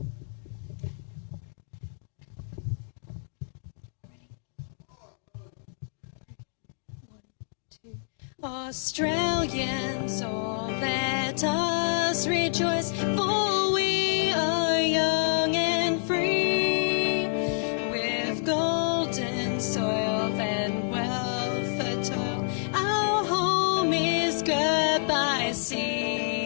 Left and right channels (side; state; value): right; silent; digital silence